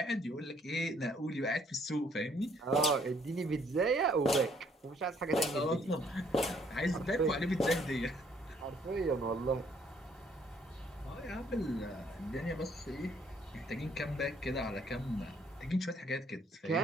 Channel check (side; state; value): both; normal; correlation 0.65